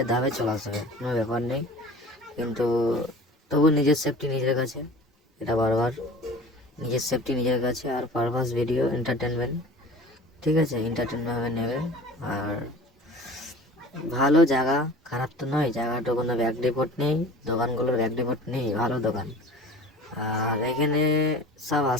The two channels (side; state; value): both; normal; correlation 0.41